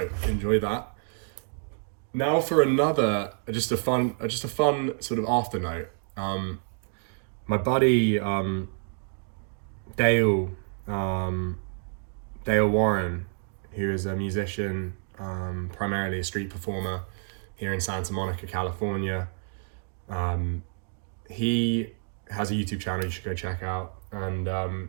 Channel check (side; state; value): left; silent; 59 dB below the other